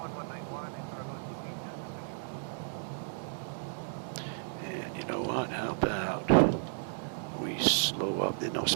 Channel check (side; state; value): left; silent; digital silence